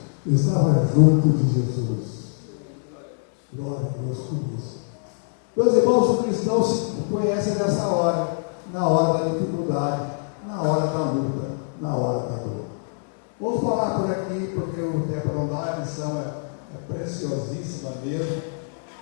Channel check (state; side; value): silent; right; 61 dB below the other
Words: estava junto de Jesus. Glória a Deus por isso. Meus irmãos, os cristãos se conhecem nessa hora, na hora da dificuldade, na hora da luta, na hora da dor. Vamos falar por aqui, porque o tempo não dá, a lição é preciosíssima mesmo.